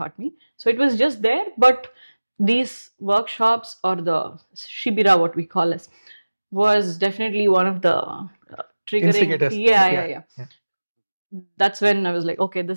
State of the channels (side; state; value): both; inverted; correlation -1.00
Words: me. So it was just there. But these workshops, or the shibira, what we call it, was definitely one of the triggering. Yeah. That's when I was like, okay,